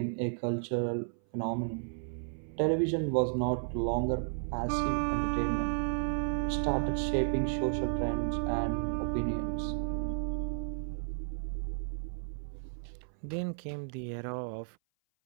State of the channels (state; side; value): silent; left; 56 dB below the other